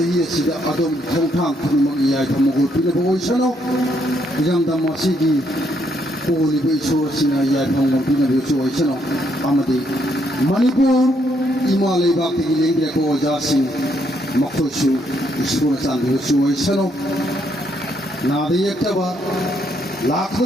Sida Adom Tongtang Punamaki Tamago Pinabo Sano Yang Damasigi Holy Bay Sina Yapam Pinabo Sano Amadi Manipur Imale Bhakti Lingria Ko Jasi Makosu Isuna Sandu Sano Nadi Yaktaba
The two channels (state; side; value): normal; both; correlation 0.74